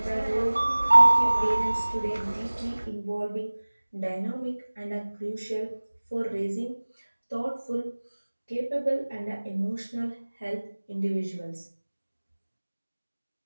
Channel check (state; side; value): inverted; both; correlation -1.00